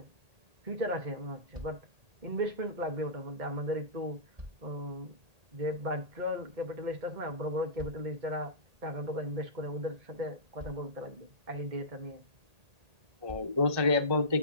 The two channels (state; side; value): late; left; 1.8 ms